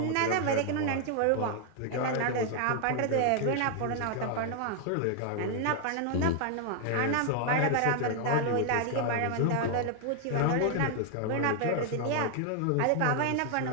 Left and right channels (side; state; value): both; different; correlation 0.00